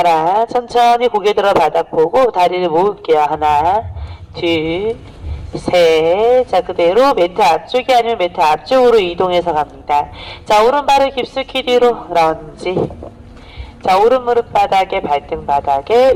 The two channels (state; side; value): identical; both; correlation 1.00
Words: 천천히 고개 들어 바닥 보고 다리를 모을게요. 하나, 둘, 셋. 자, 그대로 매트 앞쪽이 아니면 매트 앞쪽으로 이동해서 갑니다. 자, 오른발을 깊숙이 뒤로 런지. 자, 오른 무릎 바닥에, 발등 바닥에,